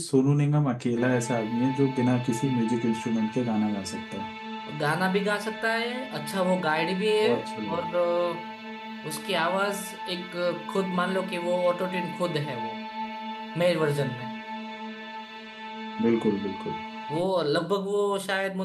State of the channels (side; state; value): both; identical; correlation 1.00